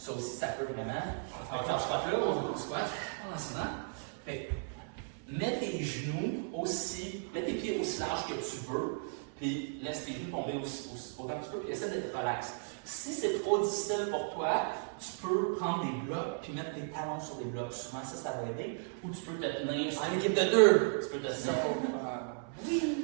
aussi, ça peut vraiment. Avec le squat là, on va au squat, en enseignant. Fait que, mets tes genoux aussi, mets tes pieds aussi larges que tu veux, puis laisse tes genoux tomber autant que tu peux, puis essaie d'être relax. Si c'est trop difficile pour toi, tu peux prendre des blocs puis mettre tes talons sur des blocs. Souvent, ça va aider. Ou tu peux te tenir sur... En équipe de deux. Tu peux te tenir.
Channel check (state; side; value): silent; left; 54 dB below the other